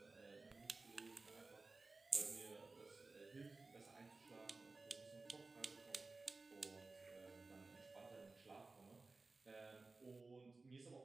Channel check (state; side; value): quieter; left; 3.6 dB